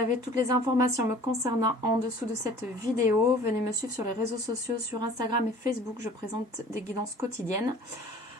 toutes les informations me concernant en dessous de cette vidéo. Venez me suivre sur les réseaux sociaux, sur Instagram et Facebook, je présente des guidances quotidiennes.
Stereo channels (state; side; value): normal; both; correlation 0.48